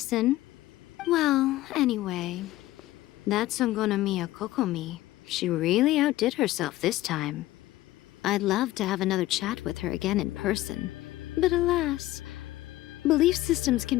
Well, anyway, that Songonomiya Kokomi, she really outdid herself this time. I'd love to have another chat with her again in person, but alas, belief systems can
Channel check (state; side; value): quieter; right; 16.2 dB